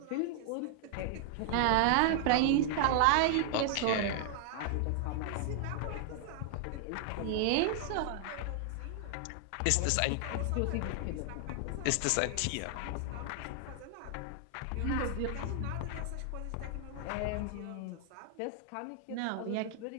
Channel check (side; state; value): both; different; correlation 0.00